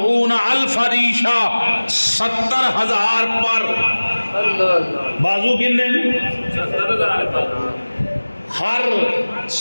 ریشہ 70,000 پر. بازو کنے ہر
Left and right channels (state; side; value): inverted; both; correlation -1.00